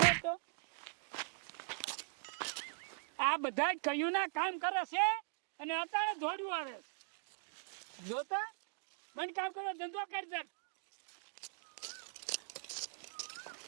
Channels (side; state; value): left; silent; digital silence